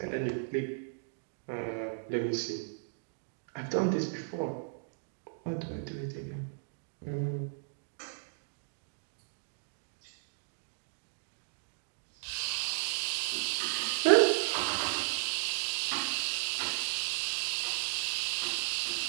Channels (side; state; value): left; silent; digital silence